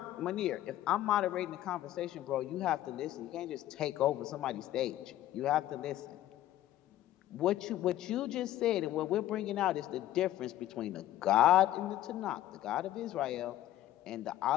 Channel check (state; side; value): quieter; right; 13.6 dB